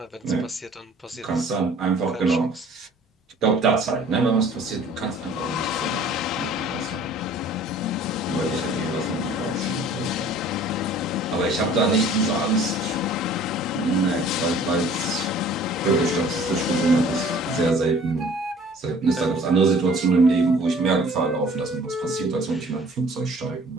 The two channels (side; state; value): both; normal; correlation 0.51